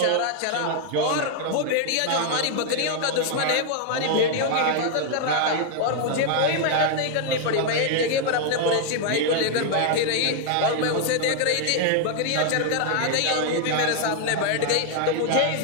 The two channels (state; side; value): different; both; correlation 0.00